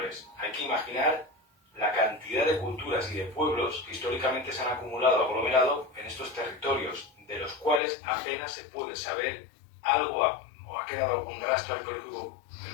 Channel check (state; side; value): drops out; right; at 7.8 s